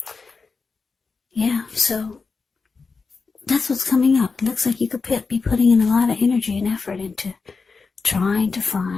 Yeah, so that's what's coming up. It looks like you could be putting in a lot of energy and effort into trying to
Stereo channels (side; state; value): right; quieter; 4.6 dB